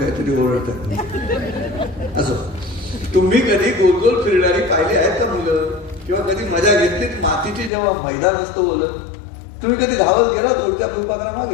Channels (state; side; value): drops out; right; at 7.7 s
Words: ओरडतात. असं तुम्ही कधी गोल गोल फिरणारी पाहिली आहेत का मुलं, किंवा कधी मजा घेतलीत मातीची जेव्हा मैदान असतं बोलत, तुम्ही कधी धावत गेला दूरच्या फुलपाखरामागे,